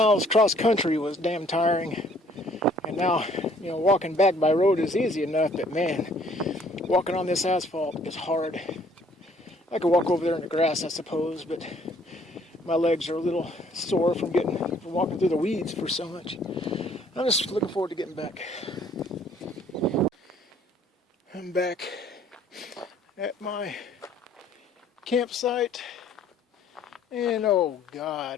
cross country was damn tiring. And now, walking back by road is easy enough, but man, walking on this asphalt is hard. I could walk over there in the grass, I suppose, but my legs are a little sore from walking through the weeds for so much. I'm just looking forward to getting back. I'm back at my campsite, and oh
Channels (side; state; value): both; normal; correlation 0.60